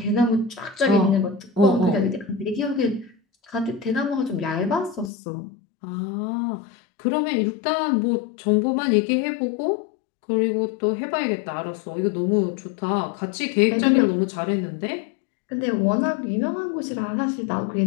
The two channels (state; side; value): drops out; right; at 5.1 s